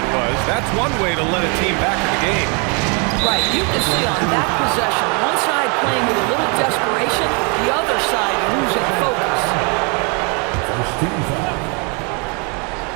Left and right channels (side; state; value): left; quieter; 33.8 dB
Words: was. That's one way to let a team back in the game. Right. You can see on that possession, one side playing with a little desperation, the other side losing focus.